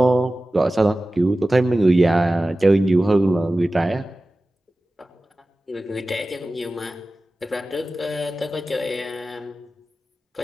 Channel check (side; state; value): both; normal; correlation 0.96